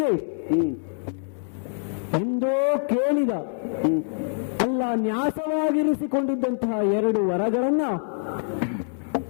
ಎಂದೋ ಕೇಳಿದ ಅಲ್ಲ ನ್ಯಾಸವಾಗಿರಿಸಿಕೊಂಡಿದ್ದಂತಹ 2 ವರಗಳನ್ನ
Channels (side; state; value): right; silent; digital silence